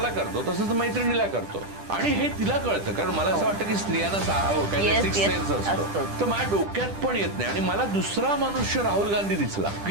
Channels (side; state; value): left; late; 10 ms